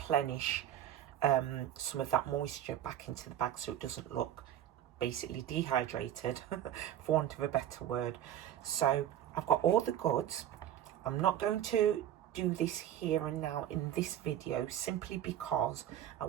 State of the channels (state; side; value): quieter; left; 11.3 dB